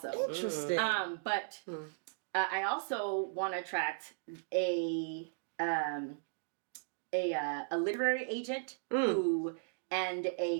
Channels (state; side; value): silent; left; digital silence